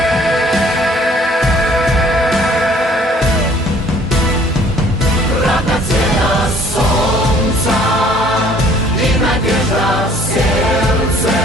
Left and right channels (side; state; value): both; normal; correlation 0.56